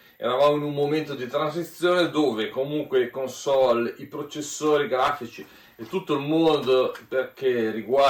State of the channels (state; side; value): identical; both; correlation 1.00